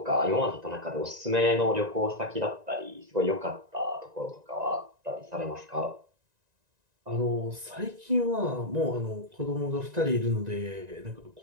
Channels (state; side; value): late; left; 1.9 ms